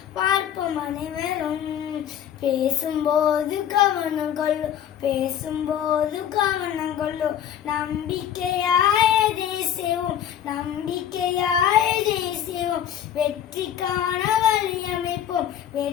பார்ப்போம் அனைவரும். பேசும்போது கவனம் கொள்ளு, பேசும்போது கவனம் கொள்ளு, நம்பிக்கையாய் செய்வோம், நம்பிக்கையாய் செய்வோம். வெற்றிக்கான வழி அமைப்போம்,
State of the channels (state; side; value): quieter; right; 9.9 dB